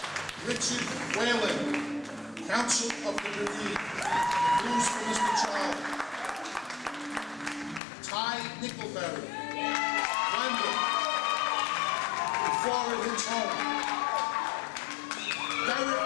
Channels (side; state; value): right; drops out; at 7.8 s